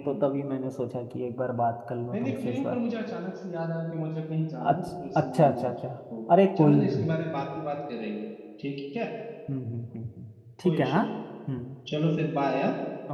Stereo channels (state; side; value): identical; both; correlation 1.00